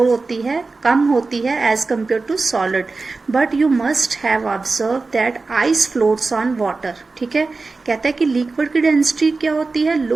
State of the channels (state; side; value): quieter; left; 3.9 dB